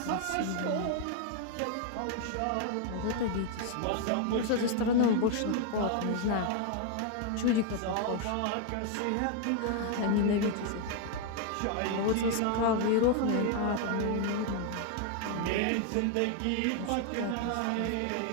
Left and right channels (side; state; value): both; different; correlation 0.00